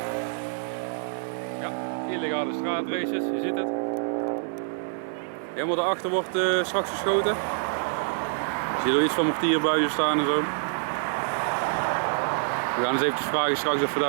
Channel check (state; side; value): silent; left; digital silence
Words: Ja, illegale straatraces, je ziet het. Helemaal daarachter wordt straks geschoten. Je ziet er iets van mortierbuizen staan en zo. We gaan eens eventjes vragen straks of we